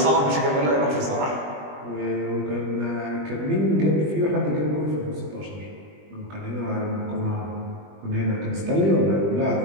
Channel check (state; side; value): late; left; 20 ms